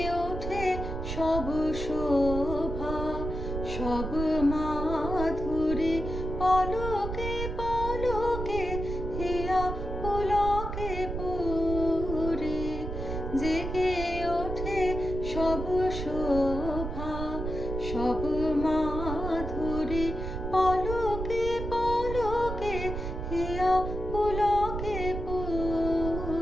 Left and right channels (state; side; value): noise; right; rumble, 5 dB below the sound